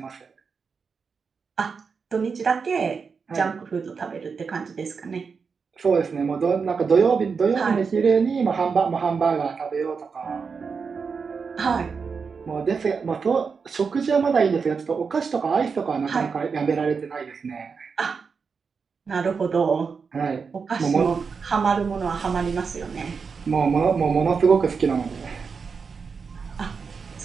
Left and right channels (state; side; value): quieter; left; 5.4 dB